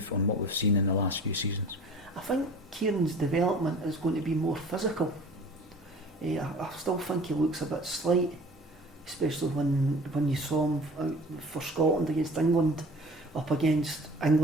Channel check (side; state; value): both; normal; correlation 0.44